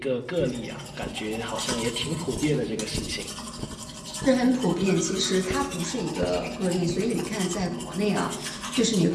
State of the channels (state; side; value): identical; both; correlation 1.00